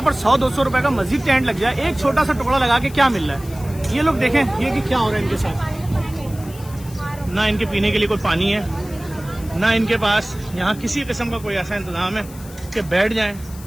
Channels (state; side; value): noise; left; hiss, 19 dB below the sound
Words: पर 100-200 रुपए का मस्जिद टेंट लग जाए, एक छोटा सा टुकड़ा लगा के क्या मिल रहा है? ये लोग देखें ये कि क्या हो रहा है इनके साथ। ना इनके पीने के लिए कोई पानी है, ना इनके पास यहाँ किसी किस्म का कोई ऐसा इंतजाम है कि बैठ जाएं।